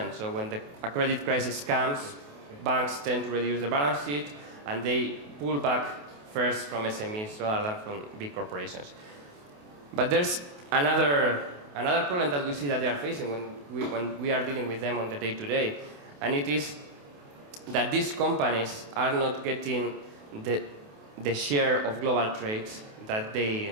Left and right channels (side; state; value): left; late; 28 ms